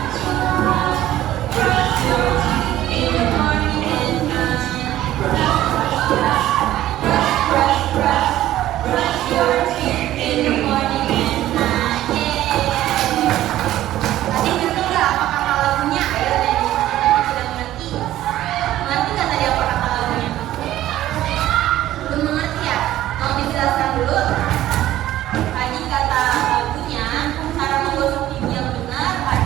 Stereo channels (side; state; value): left; quieter; 13.9 dB